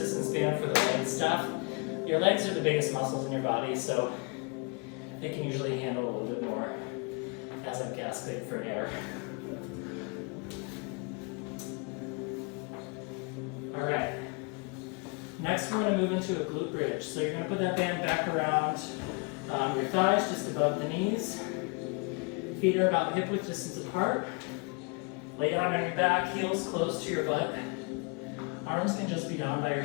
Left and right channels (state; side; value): quieter; right; 32.9 dB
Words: band for the leg stuff. Your legs are the biggest muscles in your body, so they can usually handle a little bit more as I'm gasping for air. All right. Next, we're going to move into a glute bridge. So you're going to put that band back around your thighs, just above the knees. Feet are about hip width distance apart. Lay down on your back, heels close to your butt. Arms can just be down by your